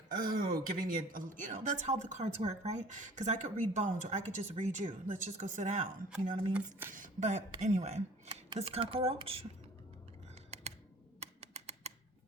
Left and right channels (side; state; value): both; normal; correlation 0.48